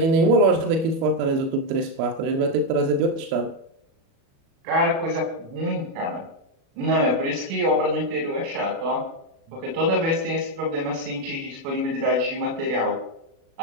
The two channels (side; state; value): left; late; 36 ms